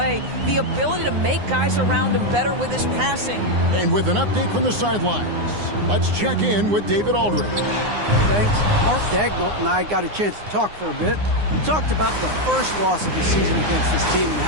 the ability to make guys around him better with his passing. And with an update from the sidelines, let's check in with David Aldridge. Thanks. Mark Daigneault and I got a chance to talk for a bit. We talked about the first loss of the season against this team and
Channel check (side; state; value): left; late; 9.7 ms